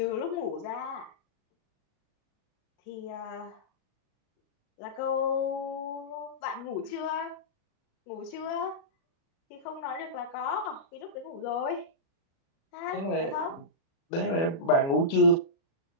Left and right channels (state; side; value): late; right; 36 ms